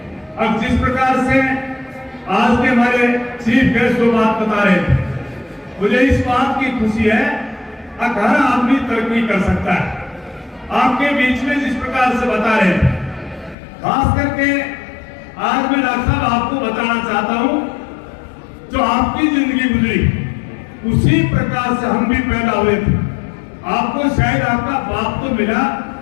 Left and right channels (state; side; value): drops out; right; at 13.6 s